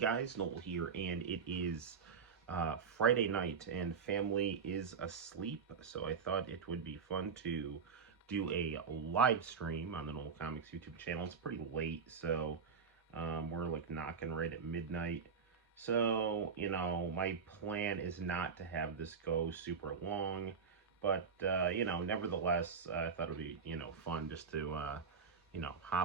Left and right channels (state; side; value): quieter; left; 5.9 dB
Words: Noel here, and it is Friday night, and family is asleep, so I thought it would be fun to do a live stream on the Noel ComiX YouTube channel. It's pretty late, so we're like knocking right at midnight. So, my plan is not to have this go super long, but, nevertheless, I thought it would be, fun just to,